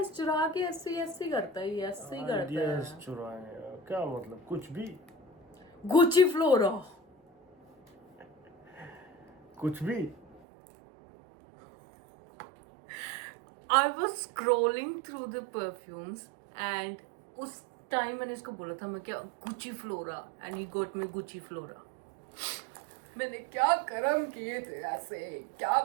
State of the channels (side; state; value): left; drops out; at 10.4 s